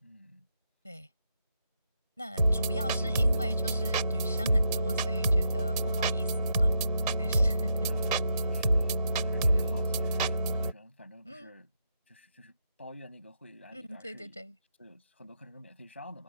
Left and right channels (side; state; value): both; inverted; correlation -0.81